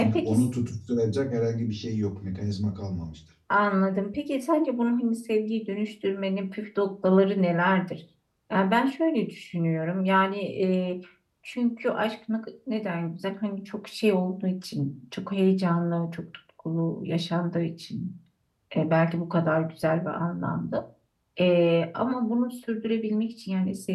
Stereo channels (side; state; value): both; identical; correlation 1.00